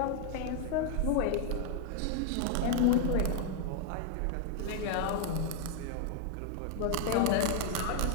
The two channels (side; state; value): both; different; correlation 0.00